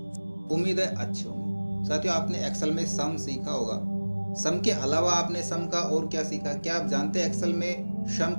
उम्मीद है अच्छे होंगे। साथियों आपने एक्सेल में सम सीखा होगा। सम के अलावा आपने सम का और क्या सीखा? क्या आप जानते हैं एक्सेल में सम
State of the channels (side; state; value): both; inverted; correlation -1.00